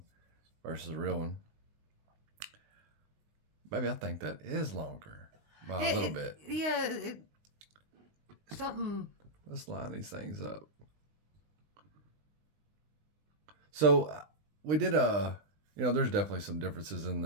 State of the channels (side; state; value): left; late; 19 ms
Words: versus a real one. Maybe I think that is longer by a little bit. Yeah, something. Let's line these things up. So we did there's definitely some differences in